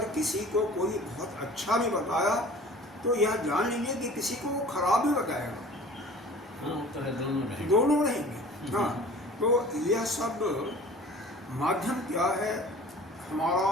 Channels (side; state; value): both; normal; correlation 0.45